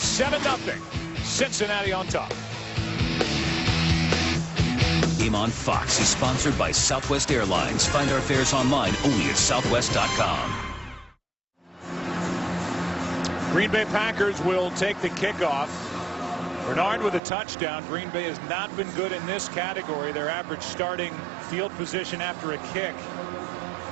Cincinnati on top. Game on Fox is sponsored by Southwest Airlines. Find our fares online only at southwest.com. Green Bay Packers will take the kickoff. Bernard with a touchdown. Green Bay has not been good in this category. Their average starting field position after a kick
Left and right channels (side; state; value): left; drops out; at 17.2 s